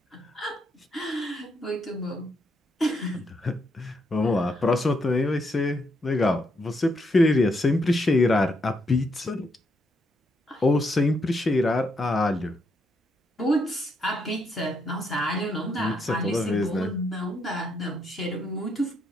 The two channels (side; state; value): both; normal; correlation 0.77